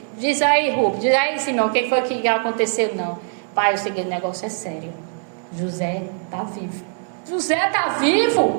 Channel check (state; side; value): silent; left; 58 dB below the other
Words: diz aí, Rubens, diz aí, Simão, quem foi que aconteceu? Não, pai, o seguinte, o negócio é sério. José está vivo. José está